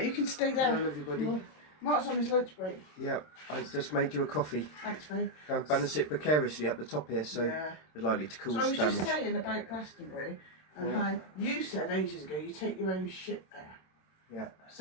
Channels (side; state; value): right; late; 27 ms